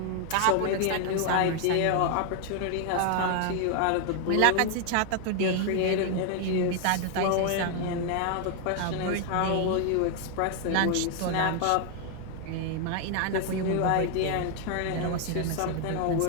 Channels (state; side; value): different; both; correlation 0.00